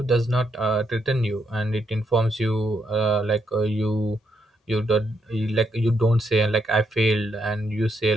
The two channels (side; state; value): both; normal; correlation 0.78